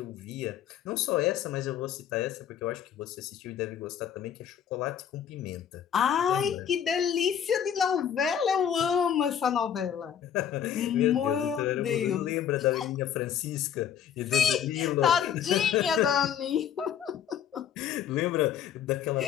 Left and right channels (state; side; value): quieter; right; 8.9 dB